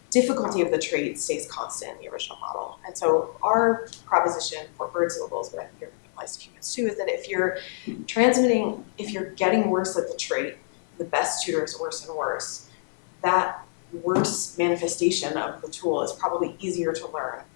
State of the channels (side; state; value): right; silent; 60 dB below the other